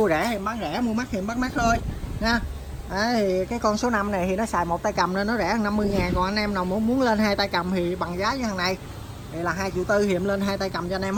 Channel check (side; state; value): both; identical; correlation 1.00